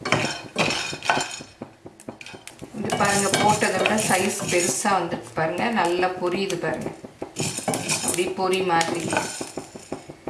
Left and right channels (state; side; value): identical; both; correlation 1.00